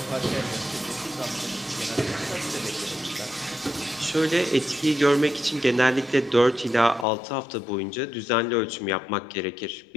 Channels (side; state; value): right; drops out; at 7.1 s